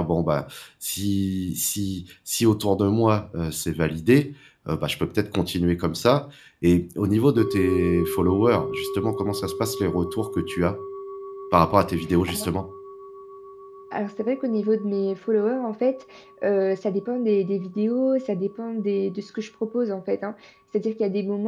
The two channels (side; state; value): both; identical; correlation 1.00